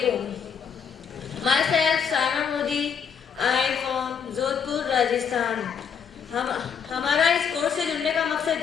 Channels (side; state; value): right; quieter; 7.0 dB